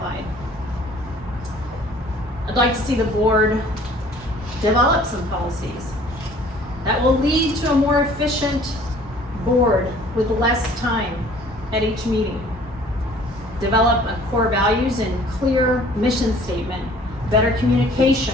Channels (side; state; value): both; normal; correlation 0.53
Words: I'd like to see the board develop some policies that will lead to a more efficient board with less time at each meeting. Develop a core values and clear mission statement, better communication,